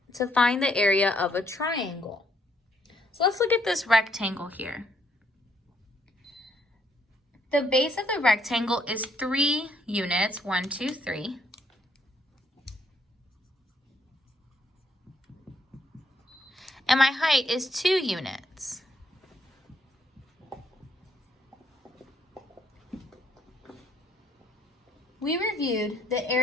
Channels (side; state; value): both; normal; correlation 0.70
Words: area of a triangle. So let's look at this rectangle here. The base of the rectangle is 3 units, 1, 2, 3. And my height is 2 units. We reviewed the